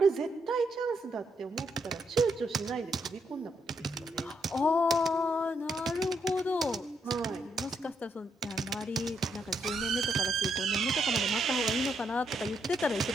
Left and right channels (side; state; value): both; normal; correlation 0.78